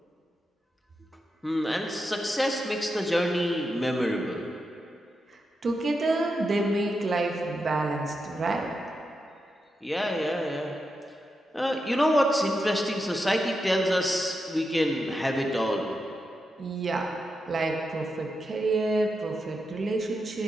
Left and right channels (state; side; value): normal; both; correlation 0.87